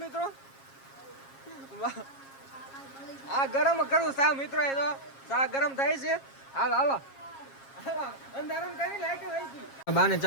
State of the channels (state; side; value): late; right; 7.4 ms